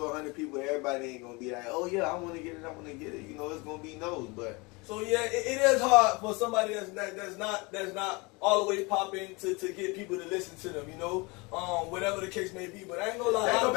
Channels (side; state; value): right; quieter; 26.9 dB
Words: people, everybody ain't gonna be like, oh yeah, I want to get it. You know, it's gonna be no's, but. So yeah, it is hard for somebody that's not all the way popping to get people to listen to them, you know, whatever the case may be. But I ain't gonna lie. Let's go